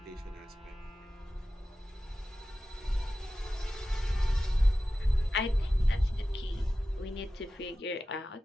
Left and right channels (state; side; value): normal; both; correlation 0.94